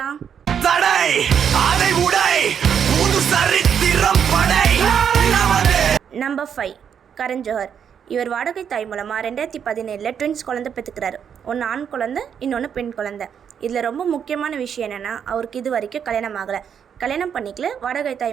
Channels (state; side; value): quieter; left; 7.9 dB